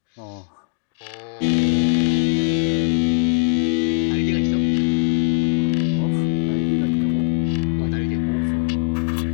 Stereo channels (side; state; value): right; silent; digital silence